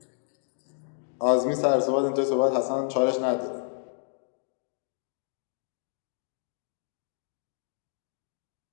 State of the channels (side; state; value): right; silent; 58 dB below the other